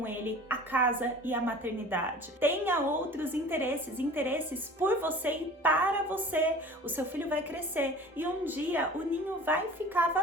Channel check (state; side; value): normal; both; correlation 0.42